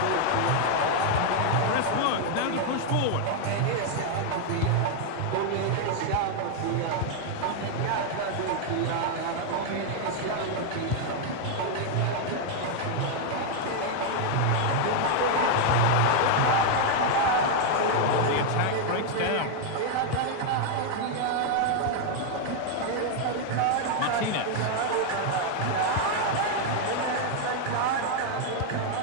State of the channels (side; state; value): both; different; correlation 0.00